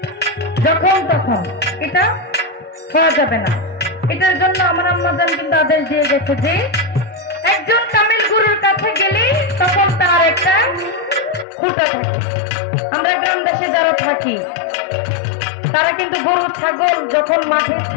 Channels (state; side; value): drops out; right; at 11.5 s